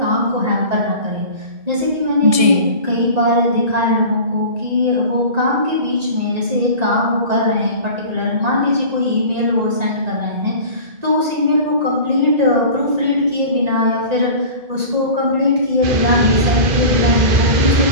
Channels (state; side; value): late; left; 1.6 ms